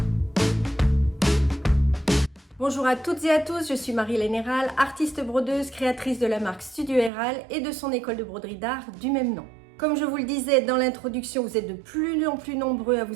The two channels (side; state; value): left; drops out; at 7.1 s